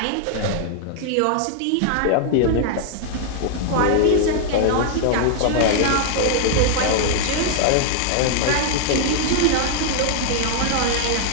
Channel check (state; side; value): different; both; correlation 0.00